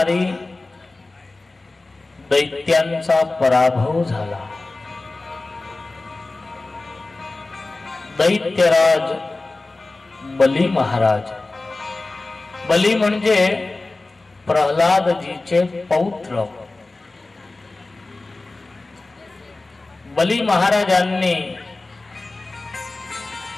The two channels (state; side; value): quieter; right; 3.2 dB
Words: दैत्यांचा पराभव झाला। दैत्यराज बली महाराज, बली म्हणजे प्रल्हादजीचे पौत्र, बली महाराजांनी